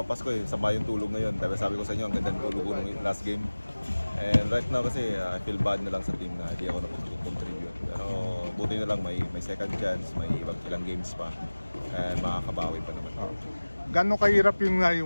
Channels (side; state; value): both; inverted; correlation -1.00